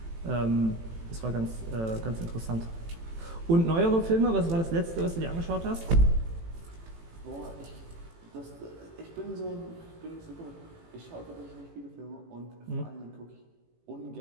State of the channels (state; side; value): late; left; 18 ms